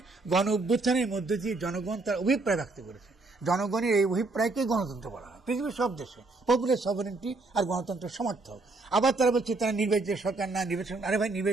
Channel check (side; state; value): left; quieter; 3.4 dB